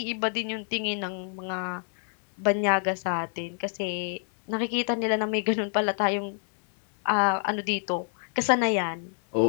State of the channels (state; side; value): silent; right; 57 dB below the other